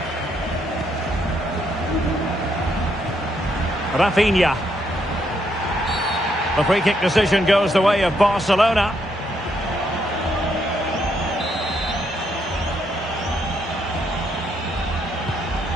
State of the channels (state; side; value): normal; both; correlation 0.75